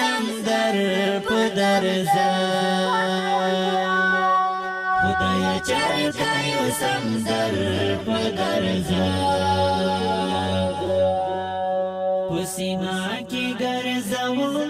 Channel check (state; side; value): identical; both; correlation 1.00